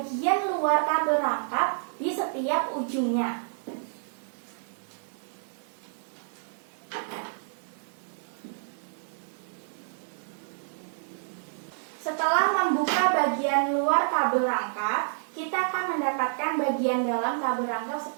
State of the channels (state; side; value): silent; left; digital silence